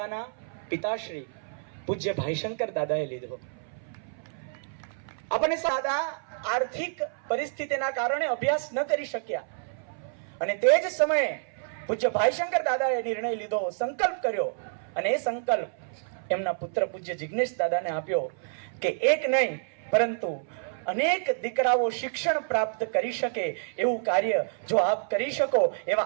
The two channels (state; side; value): silent; left; 57 dB below the other